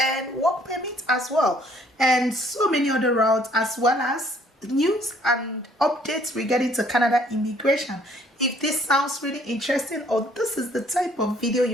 work permit as well, and so many other routes, as well as news and updates regarding to Canada immigration. If this sounds really interesting or this is the type of video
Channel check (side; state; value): both; normal; correlation 0.61